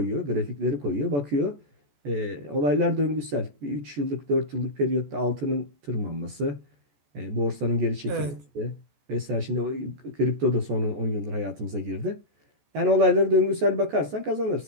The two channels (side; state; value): left; late; 14 ms